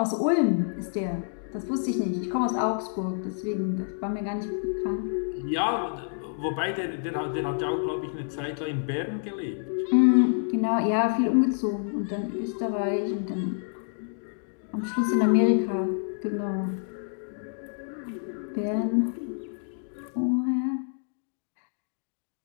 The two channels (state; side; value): silent; right; digital silence